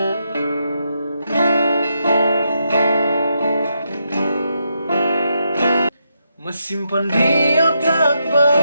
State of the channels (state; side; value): inverted; both; correlation -0.82